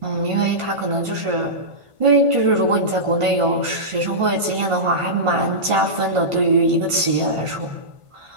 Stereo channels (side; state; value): left; late; 1.5 ms